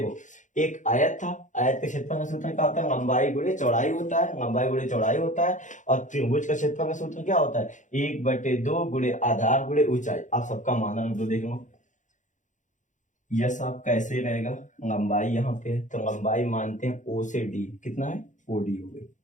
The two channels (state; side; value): late; right; 0.36 ms